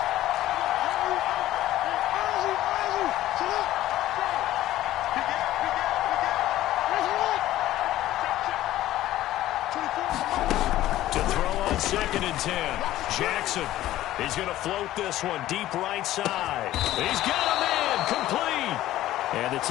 To throw on 2nd and 10. Jackson. He's going to float this one deep right side. He's got a man complete. And the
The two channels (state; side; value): quieter; right; 14.5 dB